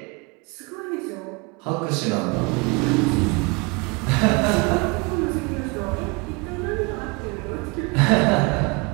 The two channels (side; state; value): left; quieter; 28.6 dB